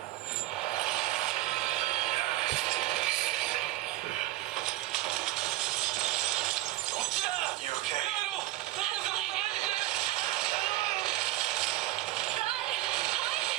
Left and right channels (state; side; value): quieter; left; 16.6 dB